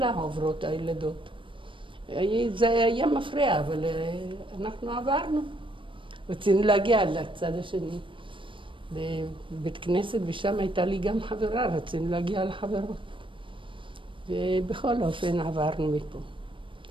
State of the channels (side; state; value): left; late; 0.25 ms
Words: עוברות הילדות. זה היה מפריע, אבל אנחנו עברנו. רצינו להגיע לצד השני. בבית כנסת, ושם הייתה לי גם חברה, רצינו להגיע לחברות. ובכל אופן עברנו מפה.